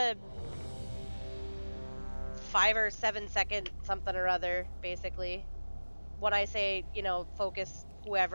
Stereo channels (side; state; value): both; inverted; correlation -1.00